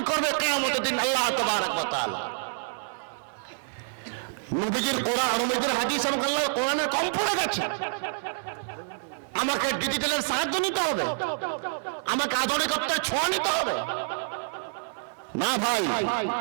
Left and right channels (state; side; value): silent; left; digital silence